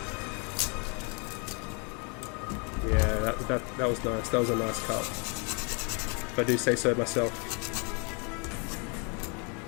Yeah, that was nice. That was a nice cut. If I do say so myself.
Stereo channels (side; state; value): right; quieter; 34.9 dB